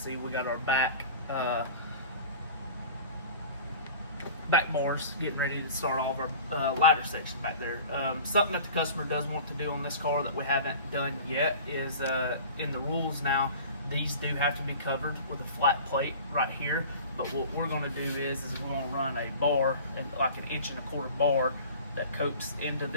we got our back bars getting ready to start all of our ladder section back there. Something that the customer does want to do on this car that we haven't done yet is in the rules now, these do have to be covered with a flat plate right here. But what we're going to do is we're going to run a bar, and like an 1.25-inch bar that coats into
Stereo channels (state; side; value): inverted; both; correlation -0.41